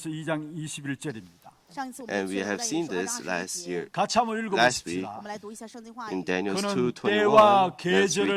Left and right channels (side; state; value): both; identical; correlation 1.00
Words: 2장 21절입니다. 上一次我们 And we 去 have 了 seen 单一 this 书 last year. 같이 한번 Last week, 읽어보십시다. 我们来读一下圣经话 In 语。 Daniel 그는 2:21, 때와 let's read 계절을